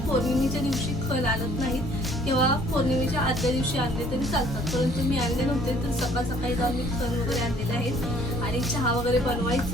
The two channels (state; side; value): normal; both; correlation 0.58